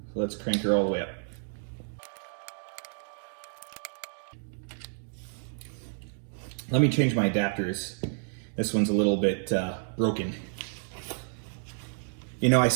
So let's crank her all the way up. Let me change my adapters. This one's a little bit broken. You know, I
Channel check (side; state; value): left; silent; digital silence